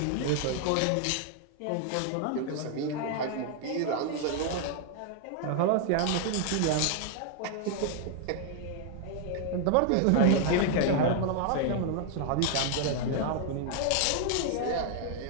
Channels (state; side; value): different; both; correlation 0.00